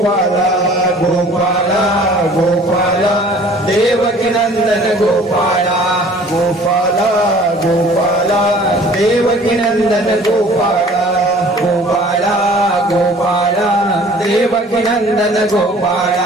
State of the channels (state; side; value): normal; both; correlation 0.50